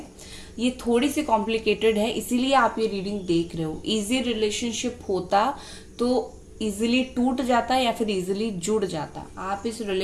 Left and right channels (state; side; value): identical; both; correlation 1.00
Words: ये थोड़ी सी कॉम्प्लिकेटेड है, इसीलिए आप ये रीडिंग देख रहे हो। इजी रिलेशनशिप होता तो इजीली टूट जाता है या फिर इजीली जुड़ जाता है। आप इस